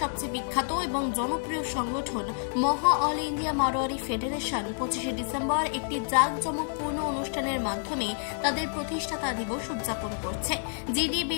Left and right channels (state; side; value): silent; right; digital silence